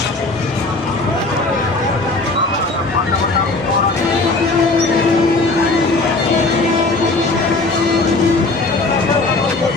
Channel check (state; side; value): quieter; right; 3.3 dB